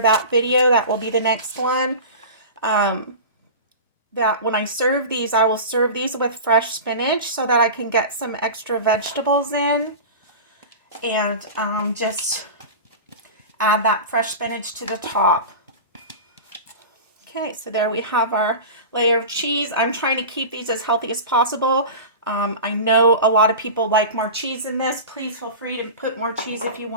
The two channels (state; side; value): inverted; both; correlation -0.31